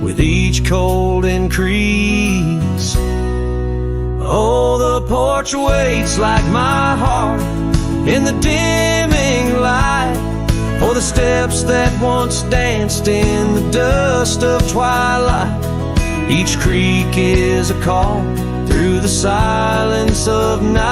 with each cold increase. Oh, the porch waits like my heart in the dimming light for the steps that once danced in the dust of twilight. Each creak is a call through the silence of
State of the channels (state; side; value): identical; both; correlation 1.00